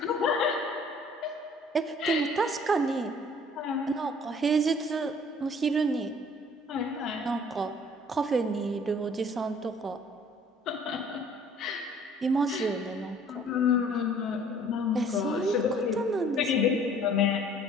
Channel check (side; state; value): both; normal; correlation 0.54